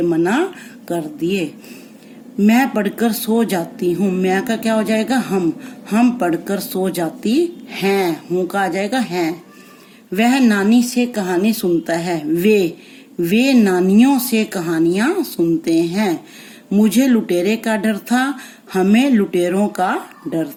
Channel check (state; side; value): identical; both; correlation 1.00